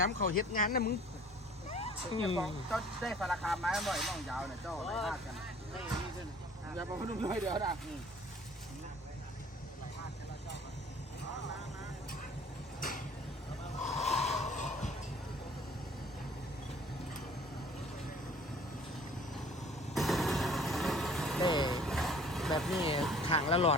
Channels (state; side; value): normal; both; correlation 0.51